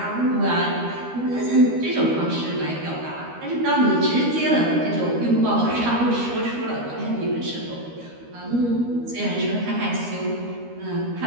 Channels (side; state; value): left; late; 13 ms